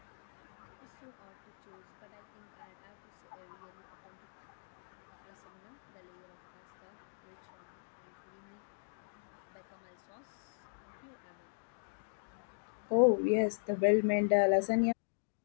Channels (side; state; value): right; silent; digital silence